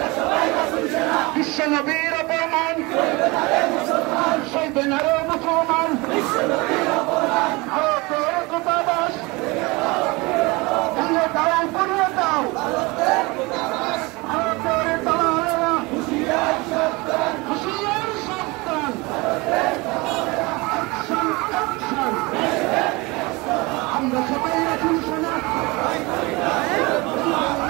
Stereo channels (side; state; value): left; quieter; 24.7 dB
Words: বিশ্ব নবীর অপমান সইবে না রে মুসলমান, ভারতের দূতাবাস ভেঙে দাও পুড়িয়ে দাও। ভারতের দালালেরা হুঁশিয়ার সাবধান। আমরা সবাই রাসূল সেনা।